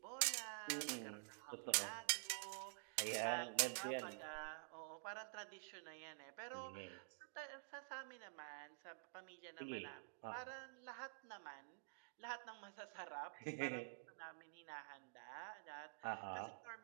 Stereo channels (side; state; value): left; silent; digital silence